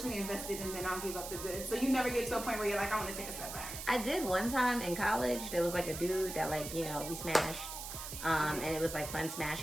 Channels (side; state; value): right; noise; hiss, 8 dB below the sound